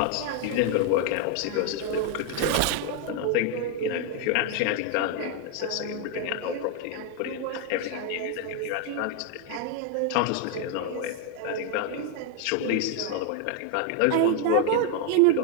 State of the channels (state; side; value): different; both; correlation 0.00